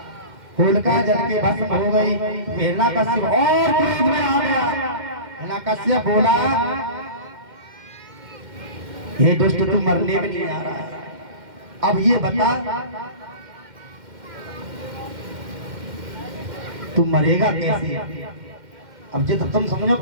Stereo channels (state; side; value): late; left; 2.1 ms